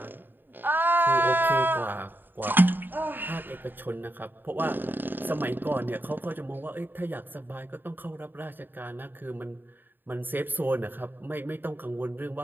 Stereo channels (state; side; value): late; left; 0.093 ms